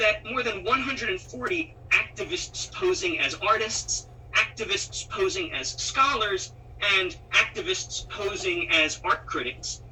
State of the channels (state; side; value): identical; both; correlation 1.00